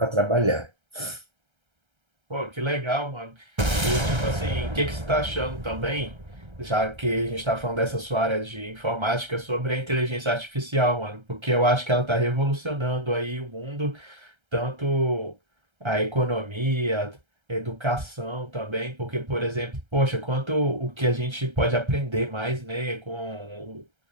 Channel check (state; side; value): late; left; 1.3 ms